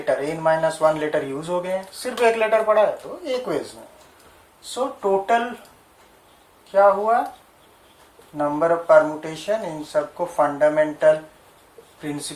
n-1 लेटर यूज हो गए हैं, सिर्फ 1 लेटर पड़ा है तो 1 वेज में। सो टोटल क्या हुआ, नंबर ऑफ परमुटेशन, इन सबको फंडामेंटल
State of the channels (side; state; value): both; identical; correlation 1.00